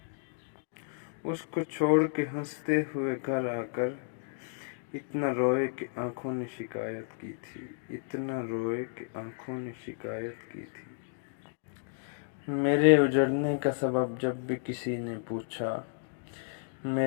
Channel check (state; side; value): silent; right; digital silence